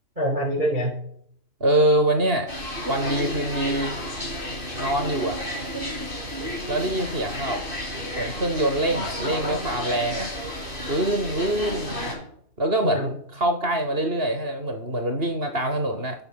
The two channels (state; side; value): late; left; 2.6 ms